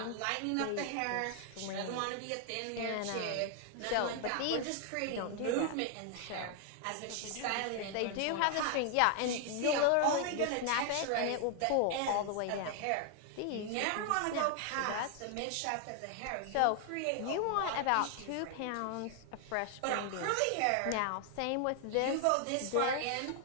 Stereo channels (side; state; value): both; different; correlation 0.00